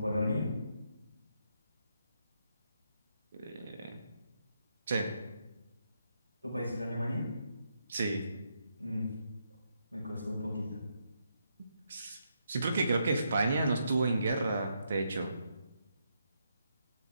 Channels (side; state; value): both; inverted; correlation -0.79